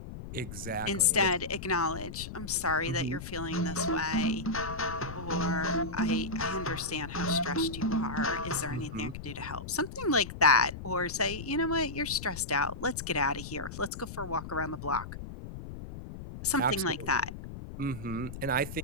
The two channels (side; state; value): left; noise; rumble, 10 dB below the sound